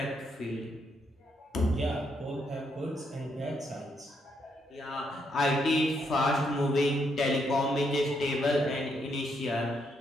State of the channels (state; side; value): normal; both; correlation 0.76